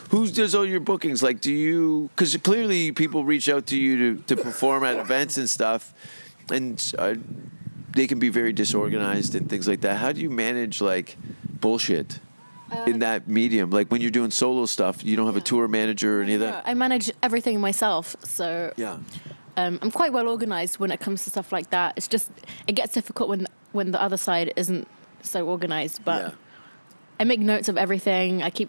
Who does all your bookings? Like, do you? Because clearly people reach out to you to perform at events and stuff, and they can be very disorganized and things like that. How do you manage like bullshit in that medium? Like when you're doing solo stuff, you don't have a tour manager or any of that. I manage everything myself, so Yeah. I'm quite well organized when it comes to stuff like that. It's just it gets difficult when the other side isn't so organized, but. Yeah. I make notes of everything. I keep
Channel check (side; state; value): both; inverted; correlation -1.00